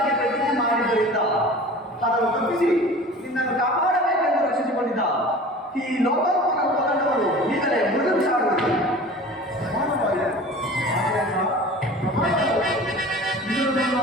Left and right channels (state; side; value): normal; both; correlation 0.40